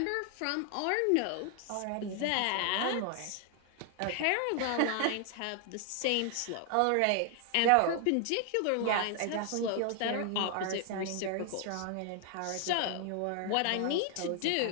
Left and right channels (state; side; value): different; both; correlation 0.00